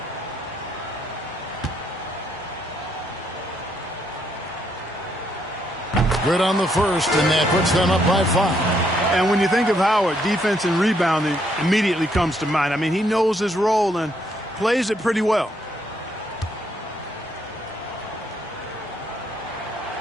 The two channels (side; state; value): both; normal; correlation 0.73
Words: Good on the first, and that puts them up by 5. And when you think of Howard, defense and rebounding immediately comes to mind. I mean, he knows his role and plays it pretty well.